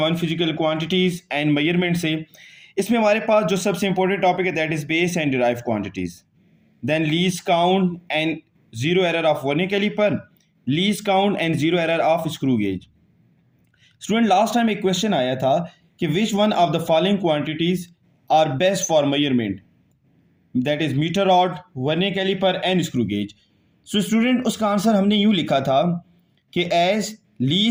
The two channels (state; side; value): identical; both; correlation 1.00